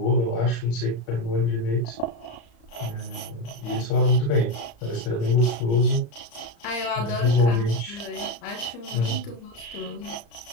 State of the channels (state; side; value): late; right; 34 ms